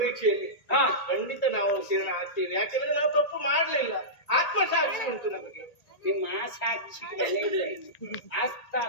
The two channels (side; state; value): right; late; 1.8 ms